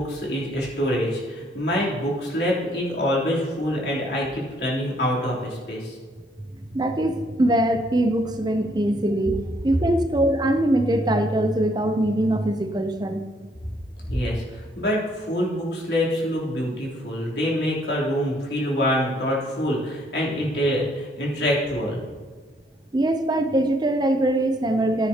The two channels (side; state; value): both; normal; correlation 0.67